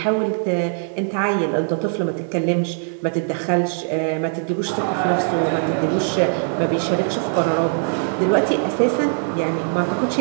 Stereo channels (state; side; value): silent; left; digital silence